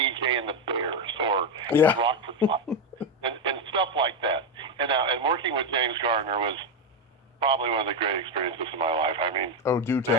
and the Bears, or Rockford Five, and stuff like that. And working with James Garner was probably one of the great experiences of my life. I mean, do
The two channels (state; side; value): normal; both; correlation 0.07